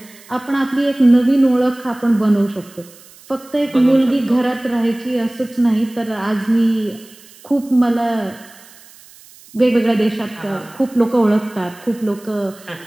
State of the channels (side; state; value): right; noise; hiss, 23 dB below the sound